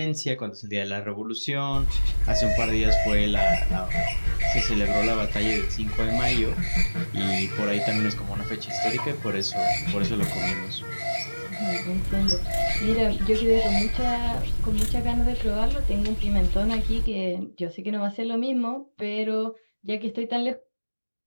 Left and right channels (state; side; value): inverted; both; correlation -1.00